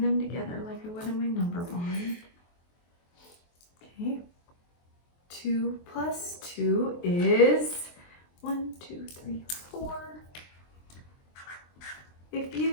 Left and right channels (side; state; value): right; late; 23 ms